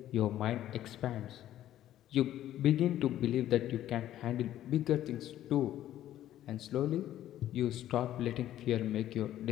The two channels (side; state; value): right; quieter; 12.6 dB